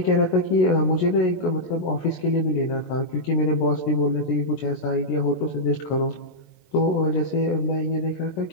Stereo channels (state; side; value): late; right; 16 ms